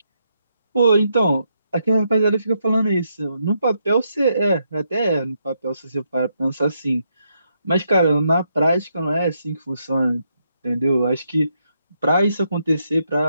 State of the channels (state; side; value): inverted; both; correlation -0.79